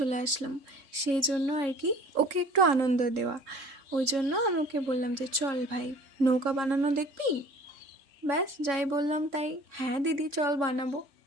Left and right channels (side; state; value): left; late; 3.6 ms